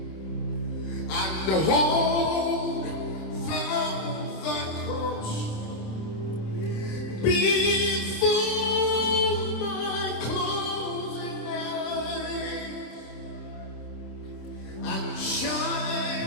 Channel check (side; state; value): right; late; 26 ms